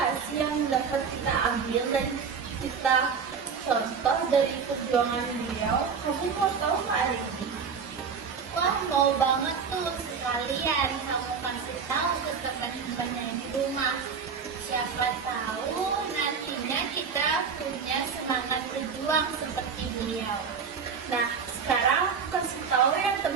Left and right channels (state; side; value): quieter; left; 6.0 dB